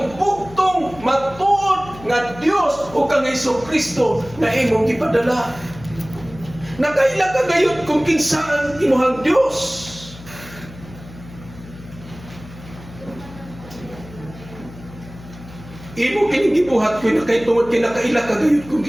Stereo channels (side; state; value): left; noise; hum, 17 dB below the sound